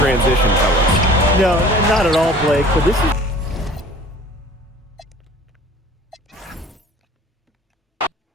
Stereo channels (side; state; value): both; normal; correlation 0.47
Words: fellas. No, not at all, Blake, but this is...